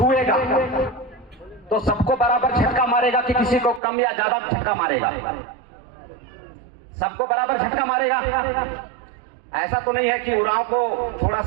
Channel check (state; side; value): drops out; left; at 3.8 s